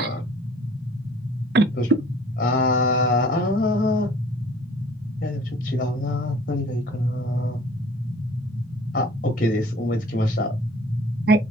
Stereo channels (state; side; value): normal; both; correlation 0.51